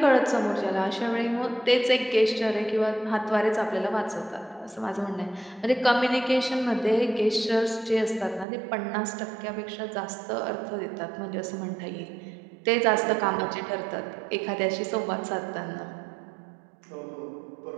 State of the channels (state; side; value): drops out; left; at 8.5 s